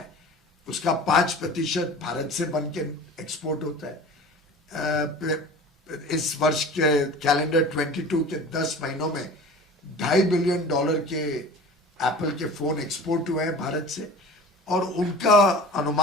उसका 5% भारत से बन के एक्सपोर्ट होता है। इस वर्ष के कैलेंडर 22 के 10 महीनों में $2.5 बिलियन के एप्पल के फोन एक्सपोर्ट हुए हैं भारत से, और उनका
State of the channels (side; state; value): both; normal; correlation 0.39